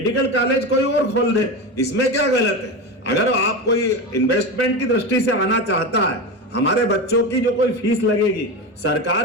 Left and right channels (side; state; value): both; normal; correlation 0.21